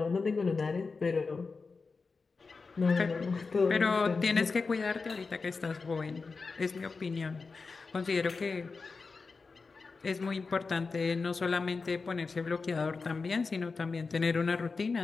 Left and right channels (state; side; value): quieter; right; 4.4 dB